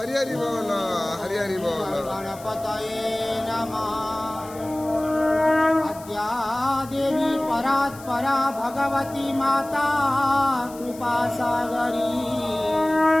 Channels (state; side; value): noise; left; hiss, 20 dB below the sound